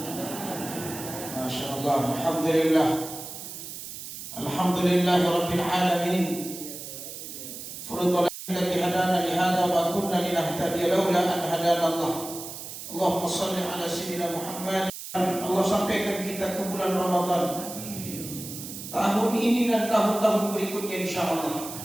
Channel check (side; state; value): right; noise; hiss, 10 dB below the sound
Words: Masya Allah, Alhamdulillah. Alhamdulillahirabbil alamin. Furudul alladzi hadana li hadza wa kunna linahtadiya laula an hadana Allah. Allahumma shalli ala sayyidina Muhammad. Allah sampaikan kita ke bulan Ramadan tahun ini dan tahun-tahun berikutnya insyaallah